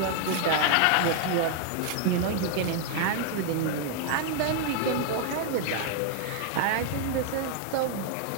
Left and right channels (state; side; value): different; both; correlation 0.00